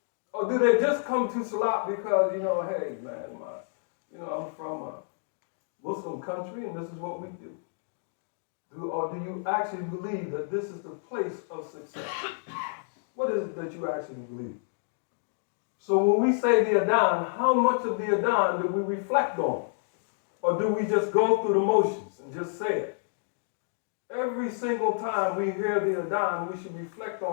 Or do they just come to Salat because, hey, man, I'm from a Muslim country and this is what we do? Or do you actually believe that this is the place of success? What is it that you actually believe? So when we say the Adhan, how much of the Adhan do we reflect on? Or do we just go through the motions and just say it? Every single time we hear the Adhan, we should reflect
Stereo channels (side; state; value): right; silent; digital silence